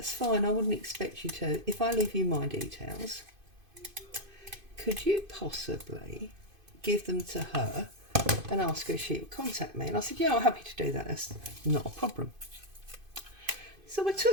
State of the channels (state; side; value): late; left; 2.5 ms